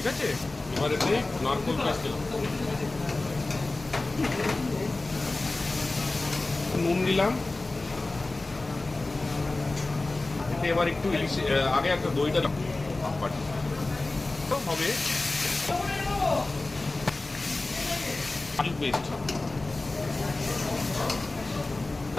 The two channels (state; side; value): quieter; right; 3.1 dB